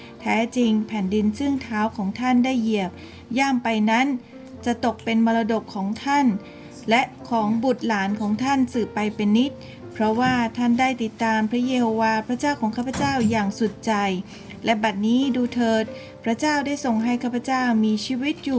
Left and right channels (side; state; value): both; identical; correlation 1.00